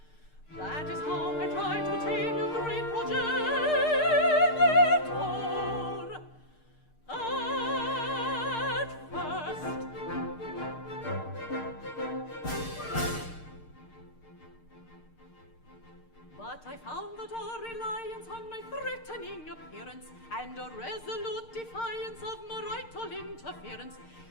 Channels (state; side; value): late; right; 6.6 ms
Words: That is how I tried to tame your great progenitor at first. But I found that a reliance on my threatening appearance and a resolute defiance of marital interference